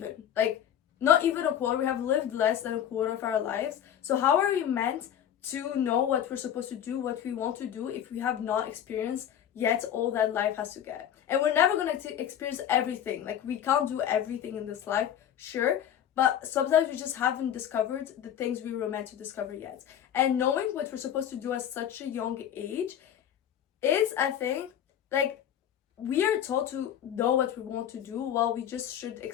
a quarter. We have lived less than a quarter of our lives. So how are we meant to know what we're supposed to do, what we want to do, if we have not experienced yet all that life has to get? And we're never going to experience everything. Like, we can't do everything in this life, sure, but sometimes we just haven't discovered the things we were meant to discover yet. And knowing what we're supposed to do at such a young age is, I think, like, we are taught to know what we want to do, while we just should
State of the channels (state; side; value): quieter; right; 10.0 dB